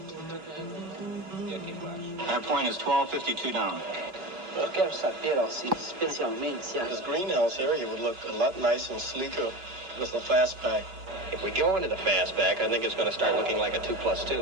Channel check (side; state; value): left; late; 5.4 ms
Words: That point is 1252 down. This greenhouse area would look a lot nicer and sleeker with the fastback. If we go into the fastback, I think it's going to start looking like a